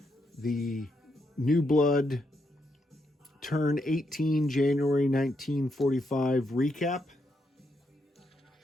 the Newblood Turn 18 January 1945 recap.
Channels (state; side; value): normal; both; correlation 0.80